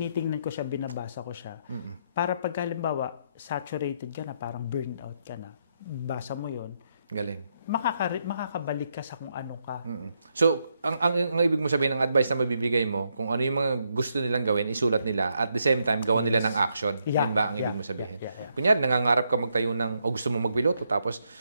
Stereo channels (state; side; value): inverted; both; correlation -0.78